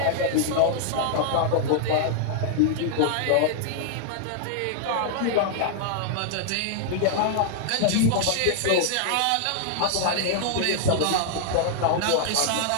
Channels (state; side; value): different; both; correlation -0.01